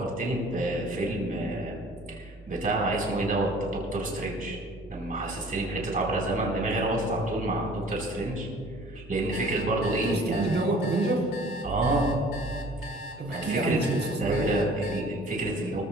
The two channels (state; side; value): normal; both; correlation 0.50